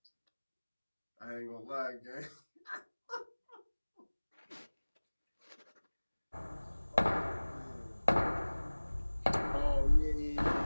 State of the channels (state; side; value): inverted; both; correlation -1.00